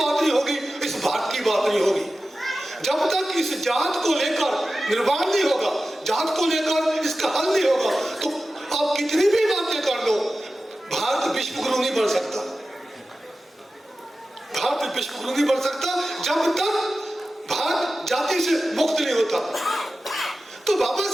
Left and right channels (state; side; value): normal; both; correlation 0.94